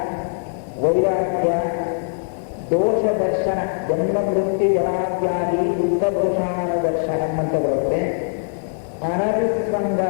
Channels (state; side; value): silent; right; digital silence